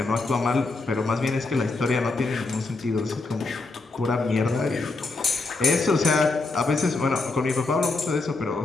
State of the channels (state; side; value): quieter; right; 3.5 dB